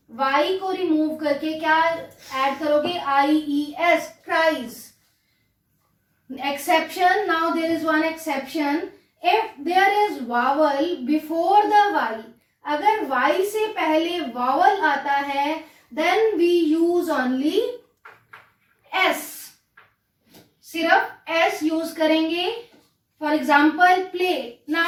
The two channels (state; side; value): identical; both; correlation 1.00